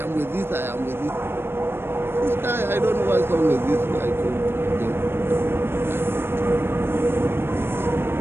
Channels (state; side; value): late; left; 0.11 ms